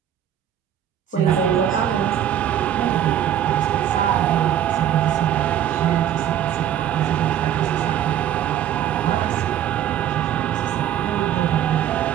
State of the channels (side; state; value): left; quieter; 10.6 dB